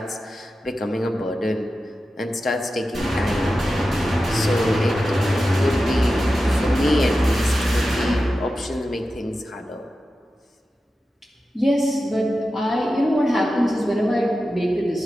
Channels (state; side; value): normal; both; correlation 0.92